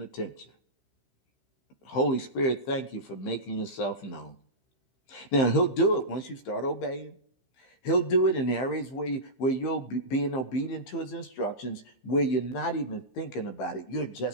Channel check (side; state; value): right; late; 15 ms